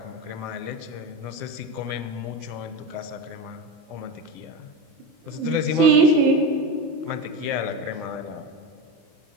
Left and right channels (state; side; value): late; left; 24 ms